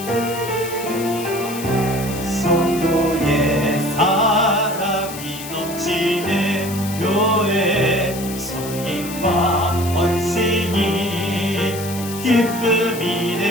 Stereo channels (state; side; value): noise; left; hiss, 11 dB below the sound